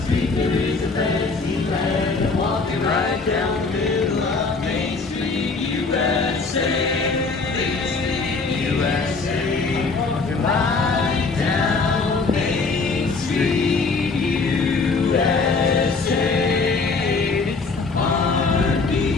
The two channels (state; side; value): quieter; right; 4.2 dB